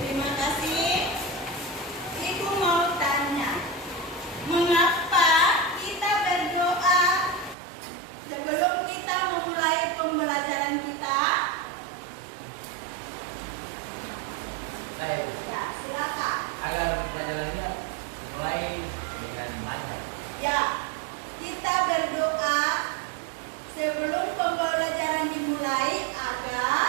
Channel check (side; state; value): left; drops out; at 7.6 s